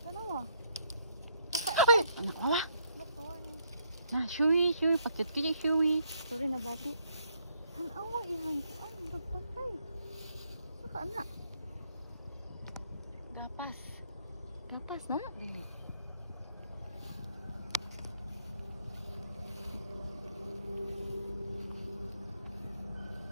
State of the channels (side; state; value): both; inverted; correlation -0.71